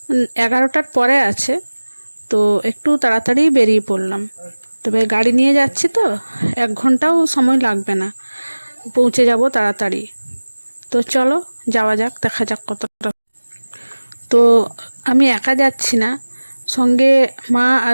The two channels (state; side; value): inverted; both; correlation -1.00